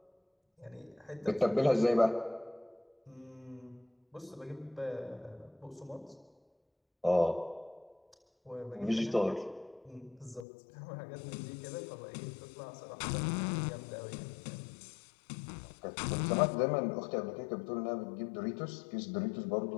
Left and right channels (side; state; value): right; drops out; at 10.5 s